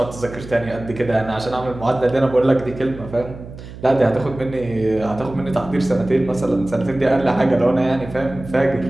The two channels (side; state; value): right; noise; hum, 14 dB below the sound